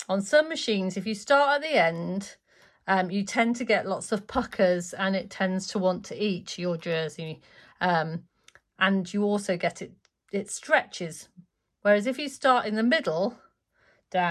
on some machines, if you start at the end, you tend to get lots of puckers and it tends to want to eat your jersey. And you also get it stretches. Whereas if you start in the middle,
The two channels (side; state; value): both; identical; correlation 1.00